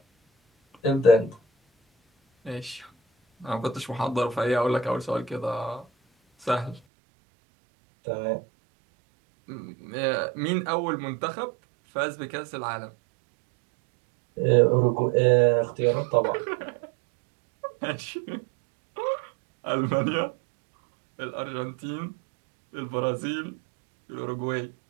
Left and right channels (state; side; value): drops out; left; at 6.8 s